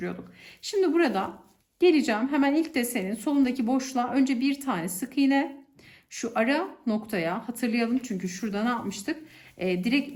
Şimdi burada geleceğim. Hemen ilk desenin solundaki boşluğa önce bir tane sık iğne. Şu ara noktaya hatırlayalım çünkü şurada ne yapmıştık? Direkt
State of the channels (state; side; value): identical; both; correlation 1.00